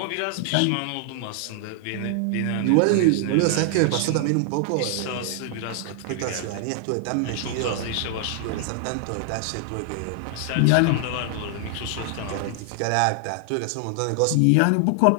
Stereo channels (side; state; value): both; different; correlation 0.00